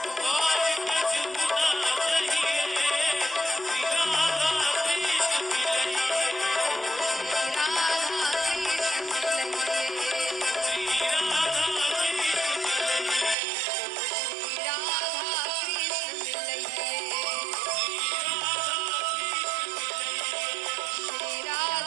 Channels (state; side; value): drops out; left; at 13.4 s